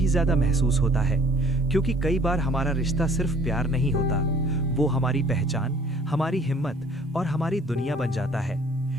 ज्यादा महसूस होता है, क्योंकि कई बार हमारा रिश्ता सिर्फ प्यार नहीं होता, वो हमारी पहचान, हमारी हिम्मत और हमारी दुनिया बन जाता है।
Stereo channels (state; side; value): normal; both; correlation 0.56